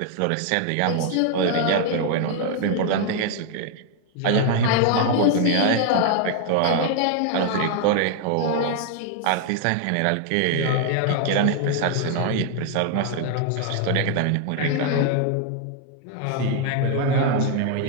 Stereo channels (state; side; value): different; both; correlation 0.00